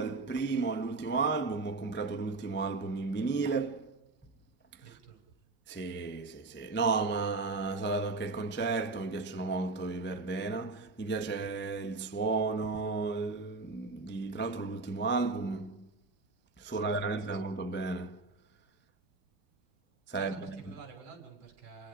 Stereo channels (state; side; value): quieter; left; 3.6 dB